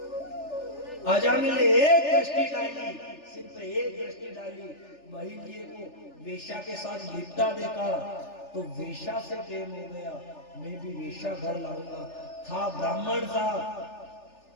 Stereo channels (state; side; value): late; right; 3.4 ms